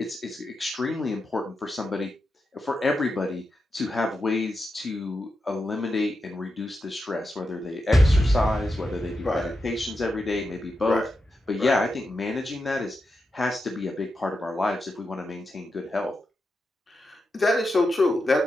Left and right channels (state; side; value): normal; both; correlation 0.88